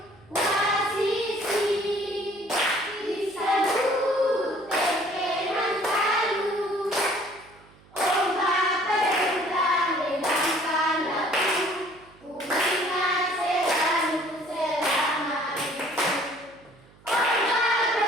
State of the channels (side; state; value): right; noise; hum, 27 dB below the sound